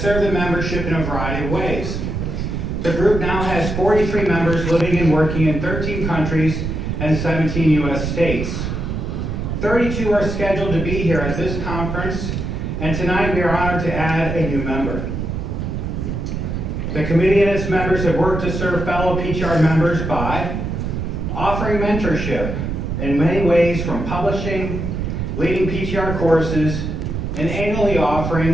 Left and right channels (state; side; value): noise; right; rumble, 3 dB below the sound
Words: served the membership in a variety of ways. The group now has 43 members living and working in 13 countries and 17 U.S. states. 32 are scheduled to be here at this conference, and tonight we are honored to add a new member. The committee and its members have worked to serve fellow PTR members by offering mentorship in many ways, from publishing, leading PTR courses, and annually